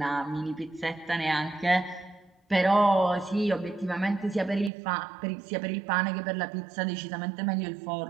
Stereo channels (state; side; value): drops out; left; at 4.7 s